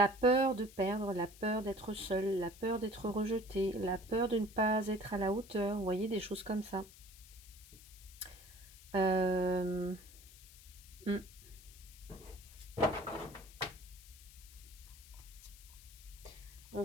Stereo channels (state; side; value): noise; left; hiss, 20 dB below the sound